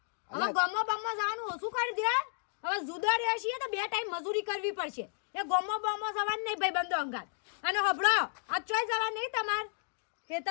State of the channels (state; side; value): silent; right; digital silence